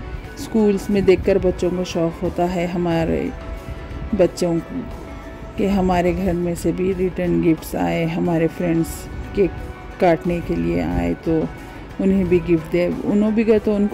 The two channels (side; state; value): both; identical; correlation 1.00